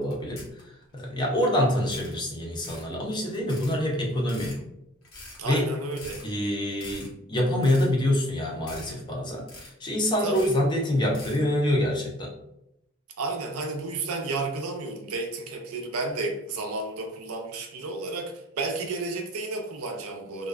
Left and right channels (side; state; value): both; normal; correlation 0.52